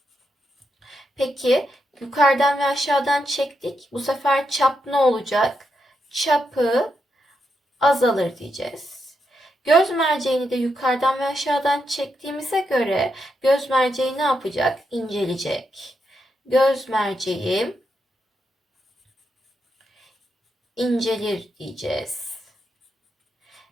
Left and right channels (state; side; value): normal; both; correlation 0.83